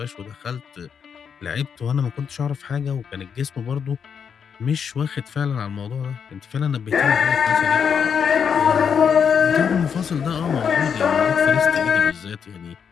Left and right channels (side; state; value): right; quieter; 7.0 dB